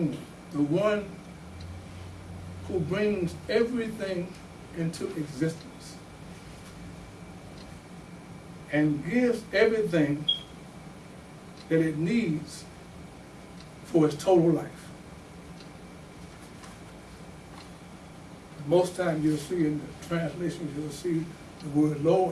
the one who brings everything into existence and gives everything that it needs for its total life. Most times you'll see in the translations, you'll see the word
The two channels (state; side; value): identical; both; correlation 1.00